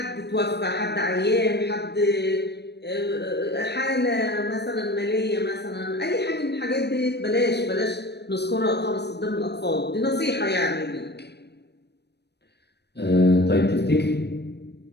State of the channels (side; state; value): right; late; 0.49 ms